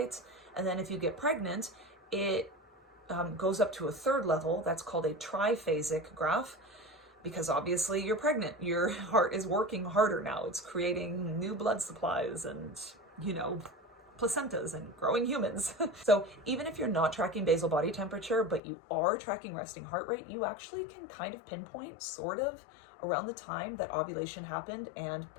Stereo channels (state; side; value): drops out; right; at 18.6 s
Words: And then if you get pregnant, it goes up to a third level. That's called a triphasic graph, because obviously you're pregnant. Your heart is working harder now. It's creating new blood supplies and, placentas and growing humans. So even if you're not tracking basal body temperature, but you are tracking resting heart rate, you actually can kind of pinpoint sort of around the time that ovulation happened and